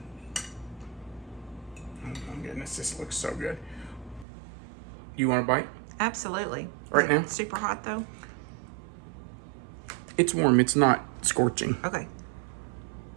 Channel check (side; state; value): left; drops out; at 4.2 s